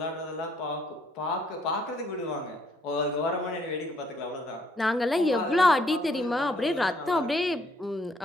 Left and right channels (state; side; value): normal; both; correlation 0.67